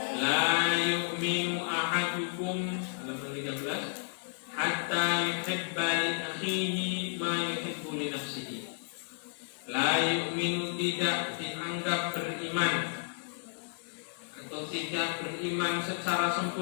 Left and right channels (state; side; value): silent; right; digital silence